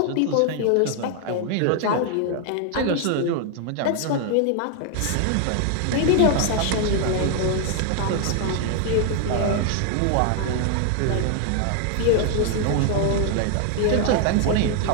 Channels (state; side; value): different; both; correlation 0.00